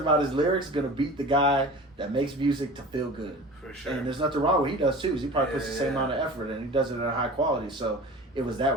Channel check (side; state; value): both; normal; correlation 0.38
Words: his lyrics gonna beat the guy that makes music to feel good? For sure. And there's nothing wrong with what he does too, because he probably puts the same Yeah. amount of effort and he does it at a high quality. So it was